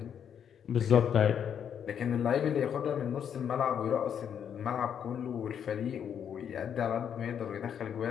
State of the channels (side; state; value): right; quieter; 8.4 dB